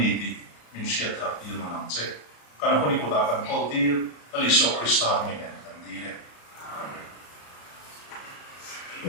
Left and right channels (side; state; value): right; late; 34 ms